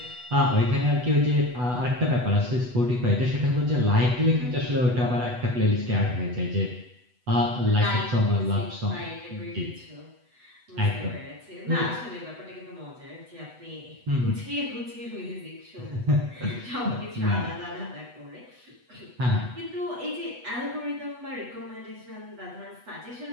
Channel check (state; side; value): late; left; 8.1 ms